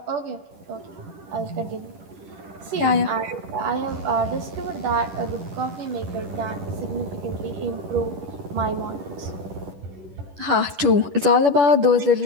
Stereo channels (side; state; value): left; late; 10 ms